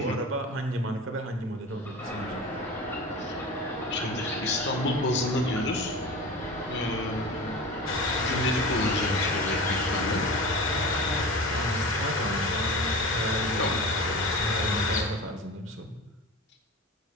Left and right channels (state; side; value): normal; both; correlation 0.32